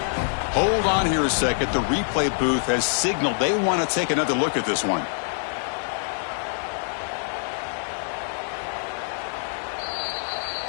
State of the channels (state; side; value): silent; right; 61 dB below the other